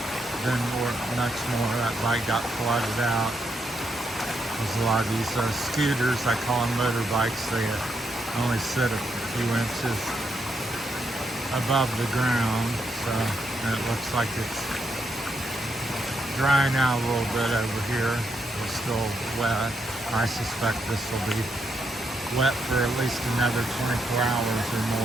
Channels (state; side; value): normal; both; correlation 0.80